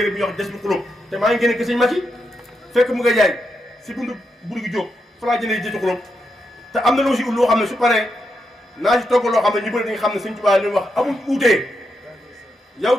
bi ñuy wax des bi xulóob te maa ngi génne ki sëñ Mati fekk mu nga jaay si buntu gi jóg fa laa jëndee jënd xulóob te am na loo si ut loo xam ne su paree naa si togg loo xam ne ñu bëri dañu xam ne sëñ Touba li wax amul uutee yow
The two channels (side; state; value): both; normal; correlation 0.83